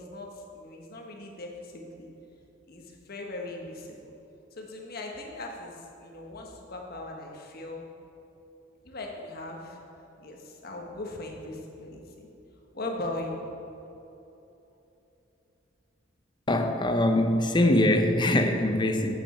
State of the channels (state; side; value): normal; both; correlation 0.58